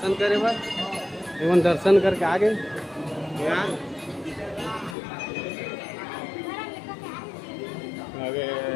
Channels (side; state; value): right; drops out; at 5.0 s